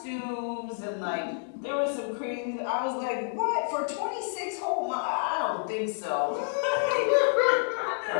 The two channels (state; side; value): silent; right; digital silence